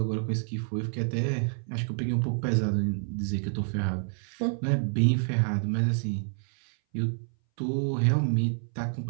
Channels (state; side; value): silent; left; 59 dB below the other